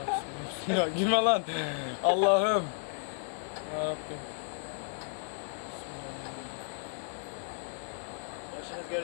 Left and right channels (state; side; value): silent; right; 56 dB below the other